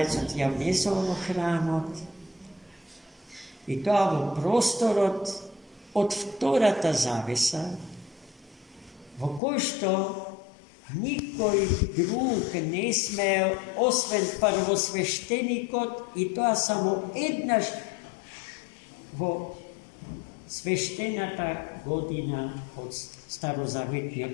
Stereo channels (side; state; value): right; drops out; at 9.4 s